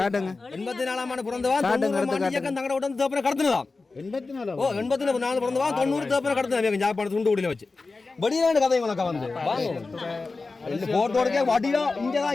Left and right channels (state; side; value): quieter; right; 3.8 dB